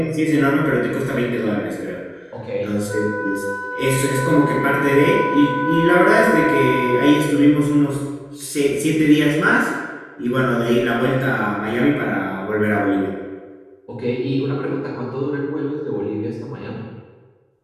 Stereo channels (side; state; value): both; identical; correlation 1.00